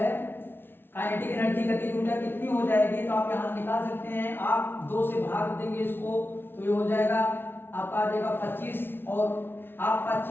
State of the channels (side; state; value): right; late; 0.11 ms